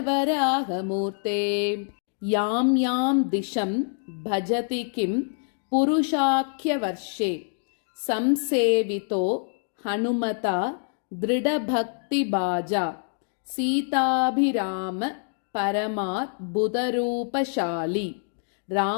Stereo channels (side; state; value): right; silent; 60 dB below the other